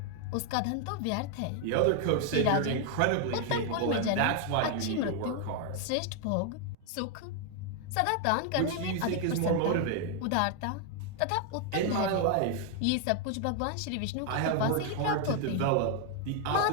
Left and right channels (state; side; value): different; both; correlation 0.00